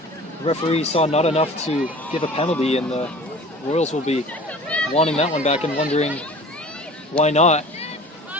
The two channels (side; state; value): both; normal; correlation 0.44